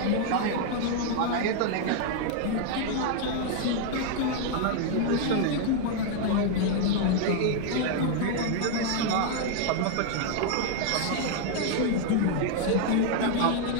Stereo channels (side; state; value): both; different; correlation 0.00